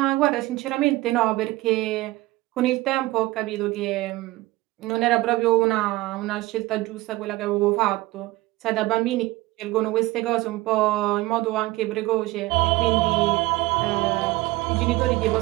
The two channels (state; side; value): quieter; left; 19.2 dB